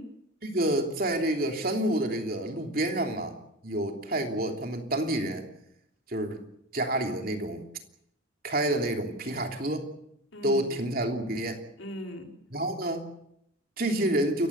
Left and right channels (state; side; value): normal; both; correlation 0.29